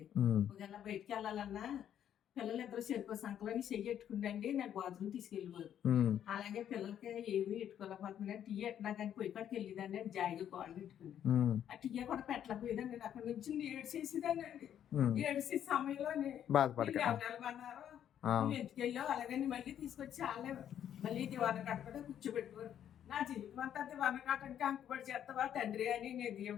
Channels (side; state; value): right; quieter; 10.0 dB